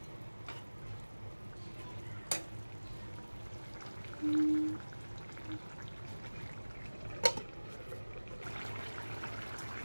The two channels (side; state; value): both; inverted; correlation -1.00